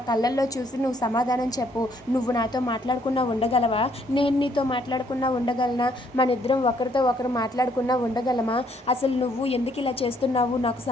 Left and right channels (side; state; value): both; normal; correlation 0.67